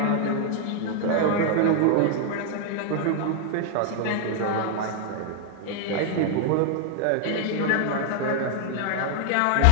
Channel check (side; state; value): both; different; correlation 0.00